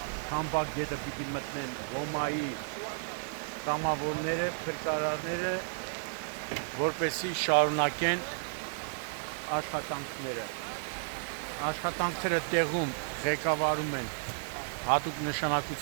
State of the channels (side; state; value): left; silent; digital silence